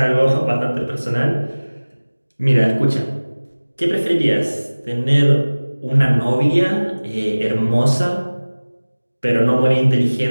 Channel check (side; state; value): both; inverted; correlation -1.00